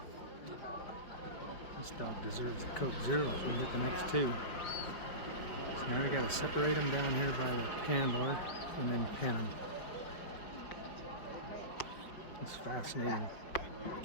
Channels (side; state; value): right; late; 5.3 ms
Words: This dog deserves a Coke Zero if we can get the next two. So now we got to separate them down here by the handler and then pin them. It's fascinating.